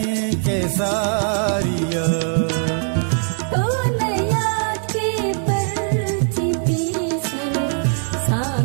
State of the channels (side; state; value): left; silent; 55 dB below the other